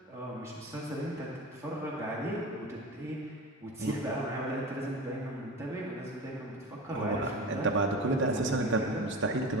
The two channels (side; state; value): both; normal; correlation 0.30